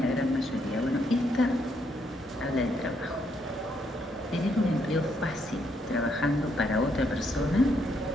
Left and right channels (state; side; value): normal; both; correlation 0.75